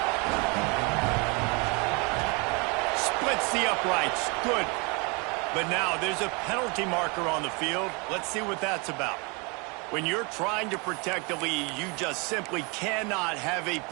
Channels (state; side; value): quieter; left; 30.6 dB